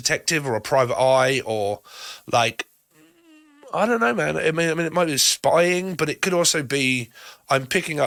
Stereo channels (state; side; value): identical; both; correlation 1.00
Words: or a private eye, or like, I don't know, man. I mean, it might be spying, but it could also be I'm picking